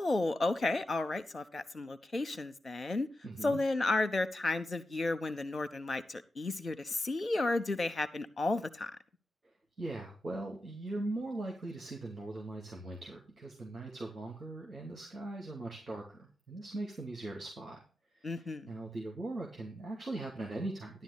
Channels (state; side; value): normal; both; correlation 0.90